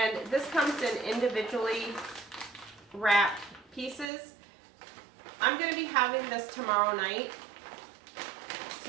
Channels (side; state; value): left; drops out; at 4.0 s